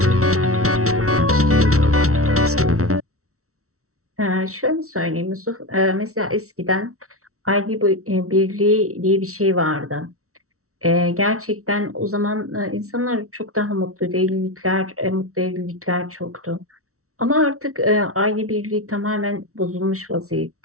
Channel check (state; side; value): late; left; 0.64 ms